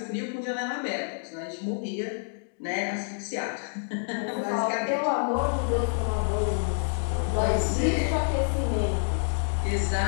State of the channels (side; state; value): right; silent; digital silence